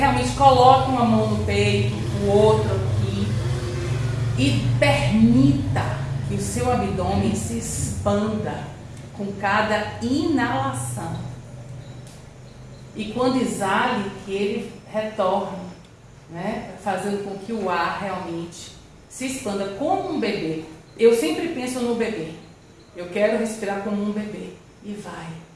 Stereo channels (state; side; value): identical; both; correlation 1.00